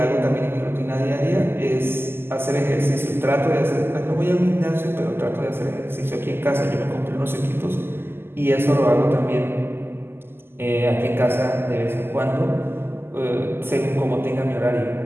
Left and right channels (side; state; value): left; late; 0.11 ms